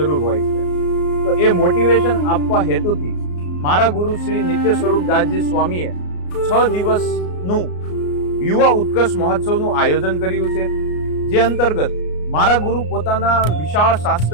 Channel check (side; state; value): right; late; 34 ms